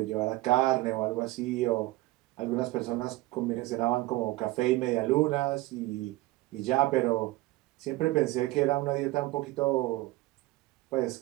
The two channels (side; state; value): left; quieter; 19.2 dB